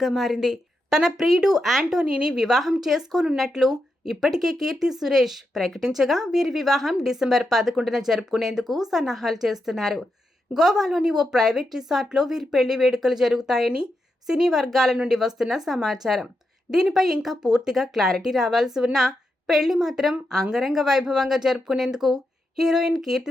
మారింది. తన ప్రియుడు యాంటోనీని వివాహం చేసుకోనున్నట్లు ఇప్పటికే కీర్తి సురేష్ ప్రకటించగా వీరి వివాహం డిసెంబర్ 11న జరుపుకునేందుకు సన్నాహాలు చేస్తున్నారు. గోవాలోని ఓ ప్రైవేట్ రిసార్ట్లో వీరి పెళ్లి వేడుకలు జరుగుతాయని సినీ వర్గాల నుండి వస్తున్న సమాచారం. దీనిపై ఇంకా పూర్తిగా క్లారిటీ రావాల్సి ఉన్నా పెళ్లి మాత్రం అంగరంగ వైభవంగా జరుపుకునేందుకు హీరోయిన్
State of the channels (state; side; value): normal; both; correlation 0.85